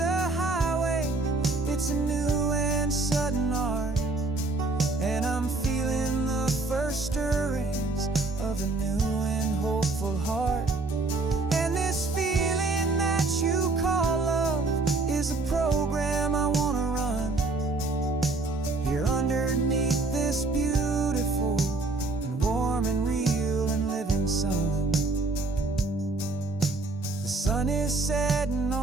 highway, it's a new and sudden art. And I'm feeling the first stirrings of a new and hopeful heart. And this feeling that you call love is a program I wanna run here underneath this beautiful and warm and real and living sun. The sun is setting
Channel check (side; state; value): left; quieter; 3.4 dB